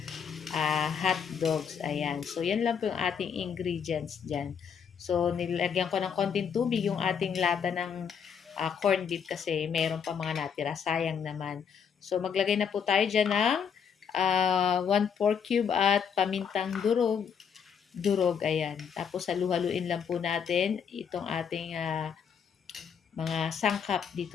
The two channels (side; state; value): right; quieter; 7.2 dB